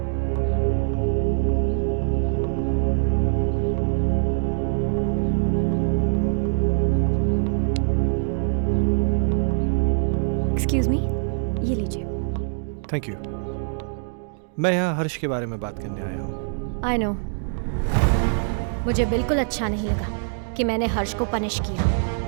एक्सक्यूज मी, ये लीजिए। Thank you. मैं यहाँ हर्ष के बारे में बात करने आया हूँ। आई नो, मुझे बिल्कुल अच्छा नहीं लगा कि मैंने हर्ष को पनिश किया।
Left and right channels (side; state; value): left; silent; 63 dB below the other